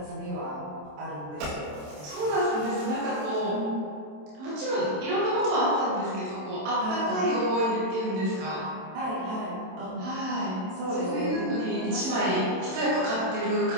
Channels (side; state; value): left; late; 27 ms